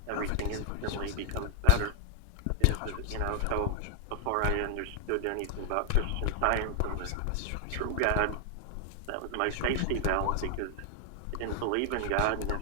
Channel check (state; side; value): different; both; correlation 0.00